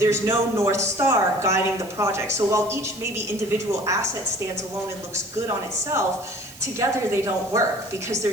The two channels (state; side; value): noise; right; hiss, 19 dB below the sound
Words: no North Star guiding the project. So while each maybe individual asset stands alone and looks good on itself, together they don't work because